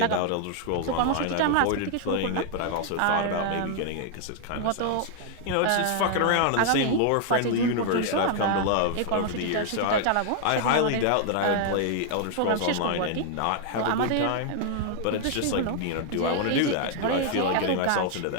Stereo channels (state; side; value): different; both; correlation 0.00